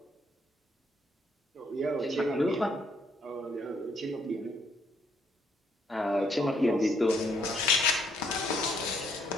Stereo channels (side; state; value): both; normal; correlation 0.70